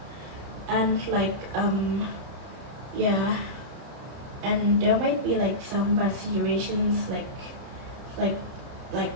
and yeah, and there might be some bad situations,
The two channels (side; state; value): left; late; 30 ms